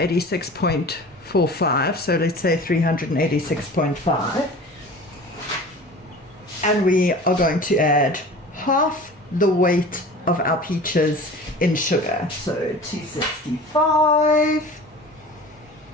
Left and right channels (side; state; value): both; normal; correlation 0.40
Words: So let's say 386.5. And we are going to add half the weight of our peaches in sugar. So 265.